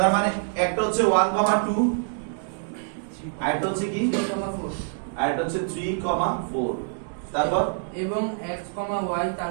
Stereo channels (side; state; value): left; silent; digital silence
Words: মানে একটা হচ্ছে 1,2, আরেকটা হচ্ছে কি 3,4, আরেকটা হচ্ছে 3,4, তারপর এবং x, y তার